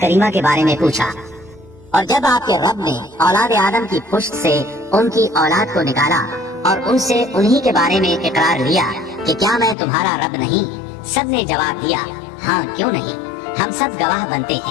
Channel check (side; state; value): right; drops out; at 9.8 s